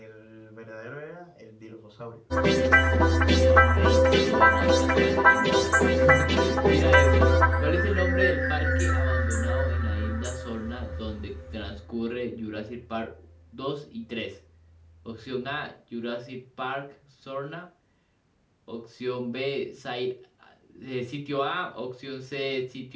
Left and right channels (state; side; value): identical; both; correlation 1.00